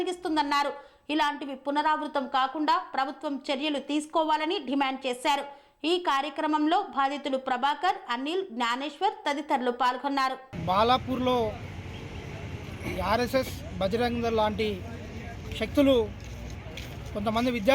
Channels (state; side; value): identical; both; correlation 1.00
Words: ఇలాంటివి పునరావృతం కాకుండా ప్రభుత్వం చర్యలు తీసుకోవాలని డిమాండ్ చేశారు. ఈ కార్యక్రమంలో బాధితులు ప్రభాకర్, అనిల్, జ్ఞానేశ్వర్ తదితరులు పాల్గొన్నారు. బాలాపూర్లో ఆర్ఎస్ఎస్, బజరంగ దళ్ లాంటి శక్తులు కొంతమంది